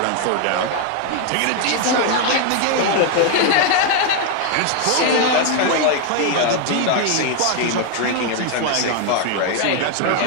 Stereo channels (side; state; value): both; different; correlation 0.01